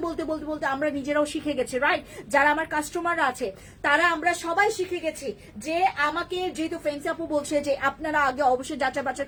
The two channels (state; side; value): identical; both; correlation 1.00